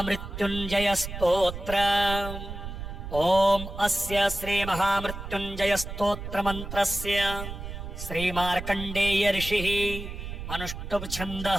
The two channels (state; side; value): noise; right; rumble, 8 dB below the sound